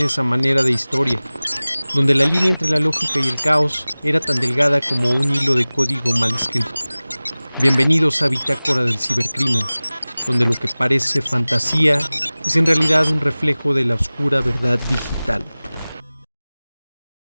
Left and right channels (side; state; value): both; inverted; correlation -0.99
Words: a manera de historia, donde la línea entre la lógica y el caos era tan delgada como un hilo de código mal escrito. Bienvenidos a Bitácora del Cibercrimen, donde lo que parece fantasía es en realidad un reflejo de la oscura verdad digital.